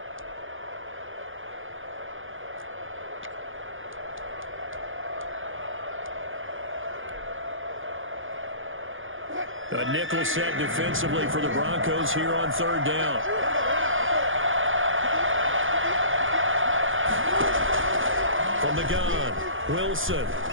A nickel set defensively for the Broncos here on 3rd down. From the gun, Wilson.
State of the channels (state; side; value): late; left; 0.58 ms